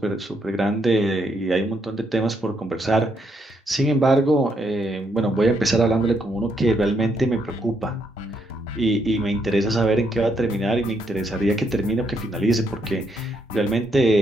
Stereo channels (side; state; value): both; normal; correlation 0.75